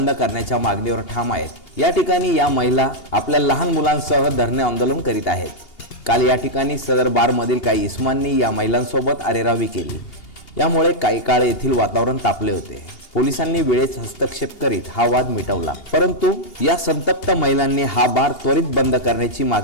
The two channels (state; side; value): late; right; 2.8 ms